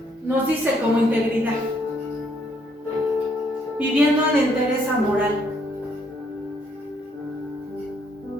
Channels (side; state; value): both; normal; correlation 0.69